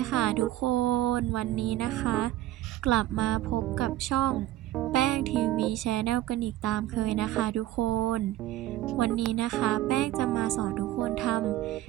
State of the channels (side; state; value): left; quieter; 14.6 dB